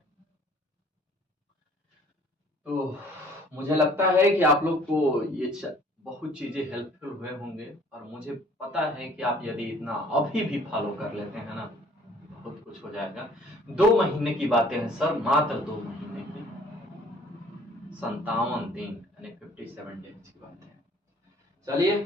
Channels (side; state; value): both; normal; correlation 0.56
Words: तो मुझे लगता है कि आप लोग को ये बहुत चीजें हेल्पफुल हुए होंगे, और मुझे पता है कि आप यदि इतना अभी भी फॉलो कर लेते हैं ना, बहुत कुछ हो जाएगा। 2 महीने की बातें हैं सर, मात्र 2 महीने की, 57 दिन यानी 57 डेज की बात है। चलिए